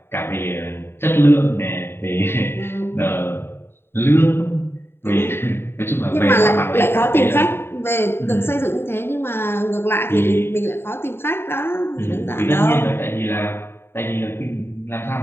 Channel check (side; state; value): right; late; 0.11 ms